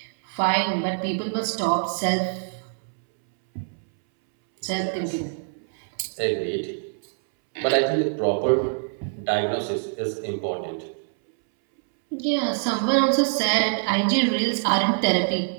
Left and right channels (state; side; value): silent; left; 62 dB below the other